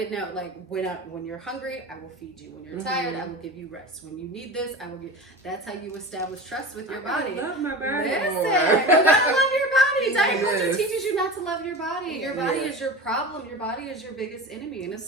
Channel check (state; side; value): normal; both; correlation 0.31